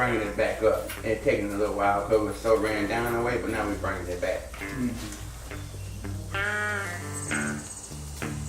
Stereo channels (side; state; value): both; identical; correlation 1.00